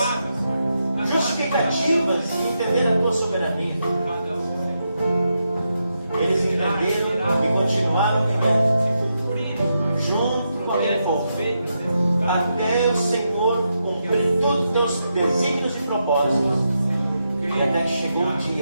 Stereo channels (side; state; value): both; inverted; correlation -0.84